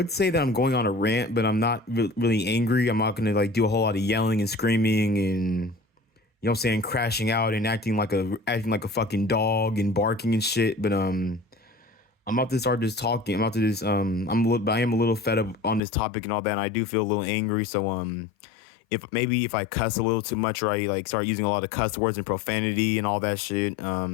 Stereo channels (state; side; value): drops out; right; at 15.8 s